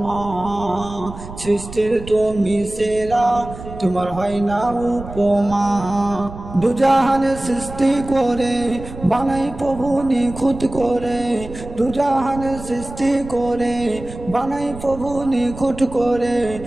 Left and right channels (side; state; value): right; noise; rumble, 13 dB below the sound